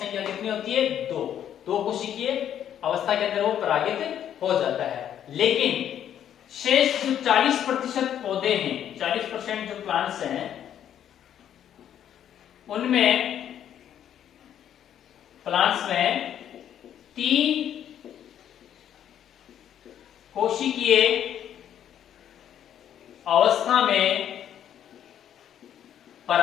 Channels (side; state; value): right; quieter; 10.1 dB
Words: कितनी होती है? दो कोशिकीय अवस्था के अंदर वो परागित हो जाता है। लेकिन शेष जो 40% पौधे हैं, 40% जो प्लांट्स हैं, उनमें प्लांट्स में 3 कोशिकीय अवस्था में